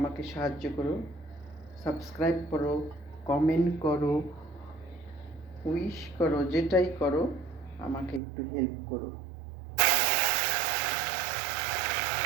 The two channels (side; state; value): left; drops out; at 8.2 s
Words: সাহায্য করো, সাবস্ক্রাইব করো, কমেন্ট করো, উইশ করো, যেটাই করো আমাকে একটু হেল্প করো।